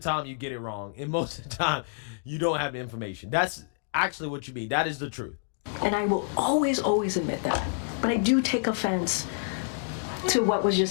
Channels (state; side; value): silent; right; digital silence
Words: you get it wrong, and most of the time you don't have the information. That's actually what you mean. That is the truth. And I will always, always admit that. But I do take offense to what was